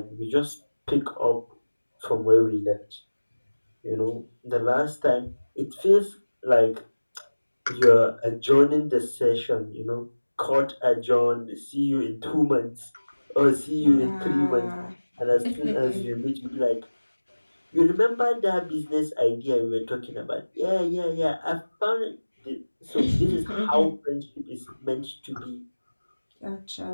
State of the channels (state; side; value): inverted; both; correlation -1.00